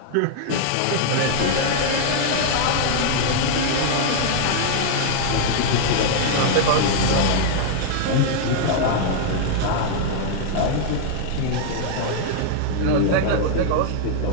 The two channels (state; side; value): different; both; correlation 0.00